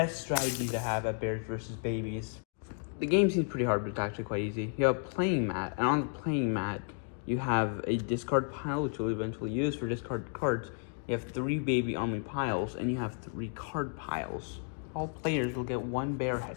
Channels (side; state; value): right; silent; 56 dB below the other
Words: strategies to have at Bears versus Babies. The game seems pretty hard, but it's actually quite easy. You have a playing mat, and on the playing mat, you have a discard pile, which you'll eventually use for discard cards. You have 3 baby army piles, and you have 3 card piles. All players will get 1 bear